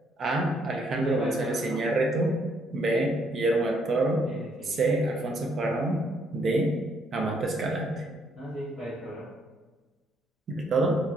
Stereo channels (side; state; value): both; normal; correlation 0.71